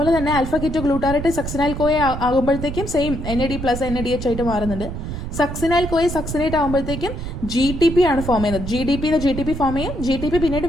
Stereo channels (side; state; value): right; noise; rumble, 6 dB below the sound